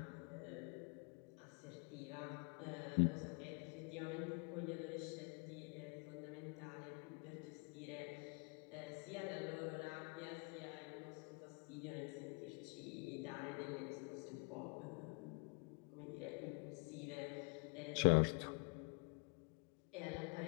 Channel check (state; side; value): quieter; right; 36.0 dB